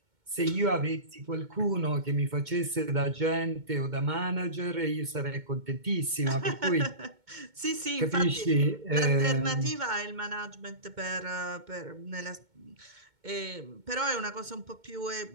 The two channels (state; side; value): late; left; 2.2 ms